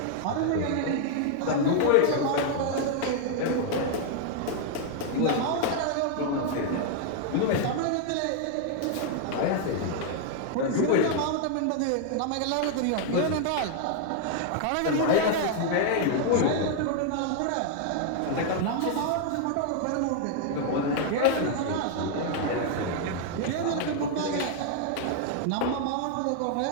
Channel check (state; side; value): different; both; correlation 0.00